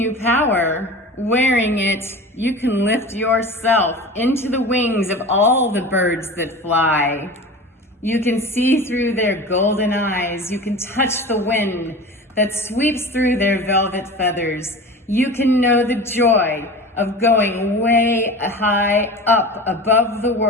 power. wearing it, you can lift yourself into the wings of all the birds that fly. You can see through their golden eyes. You can touch the wind that sweeps through their velvet feathers. You can know the joy of going way high up above the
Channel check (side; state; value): both; normal; correlation 0.34